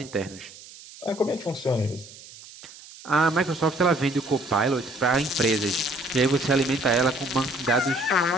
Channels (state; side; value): noise; right; hiss, 18 dB below the sound